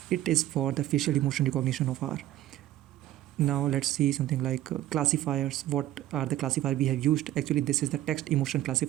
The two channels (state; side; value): quieter; left; 13.9 dB